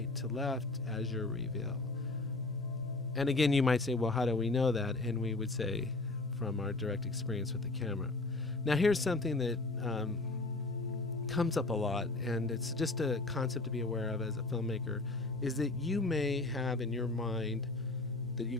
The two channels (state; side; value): quieter; right; 3.1 dB